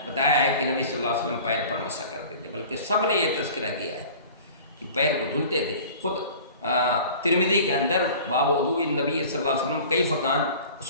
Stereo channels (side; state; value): both; inverted; correlation -0.43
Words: بتایا ہے کہ نبی صلی اللہ علیہ وسلم پیر پر مسح کرتے تھے، بلکہ سب نے یہ تذکرہ کیا ہے کہ پیر کو دھلتے تھے۔ خود ترمذی کے اندر باب وضوء النبی صلی اللہ علیہ وسلم کیف کان،